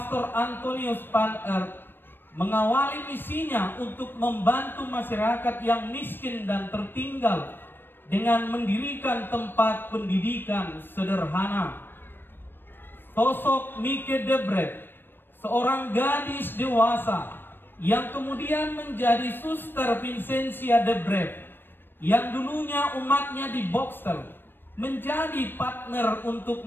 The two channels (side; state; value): right; late; 0.097 ms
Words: Antonius van Eert mengawali misinya untuk membantu masyarakat yang miskin dan tertinggal dengan mendirikan tempat pendidikan sederhana. Sosok Mieke de Breth, seorang gadis dewasa yang kemudian menjadi Suster Vincentia de Breth, yang dulunya umatnya di Boxtel, menjadi partner untuk